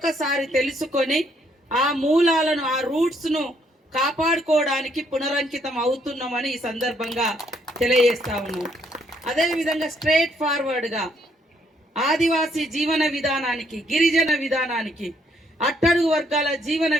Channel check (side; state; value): both; normal; correlation 0.70